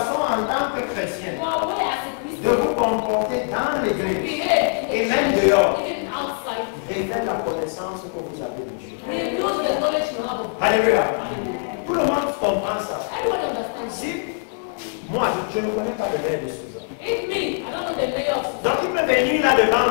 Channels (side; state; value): right; silent; 58 dB below the other